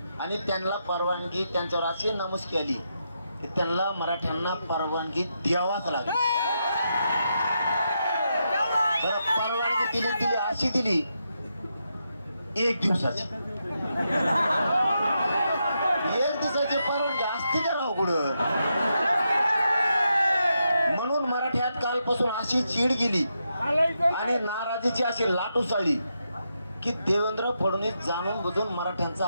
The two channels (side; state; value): both; inverted; correlation -0.83